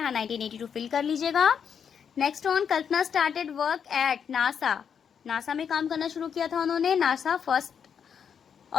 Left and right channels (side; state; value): right; quieter; 7.4 dB